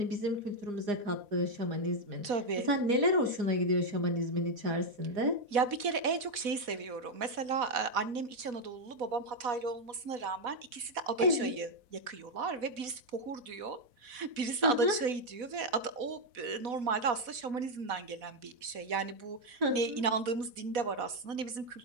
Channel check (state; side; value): late; left; 4.1 ms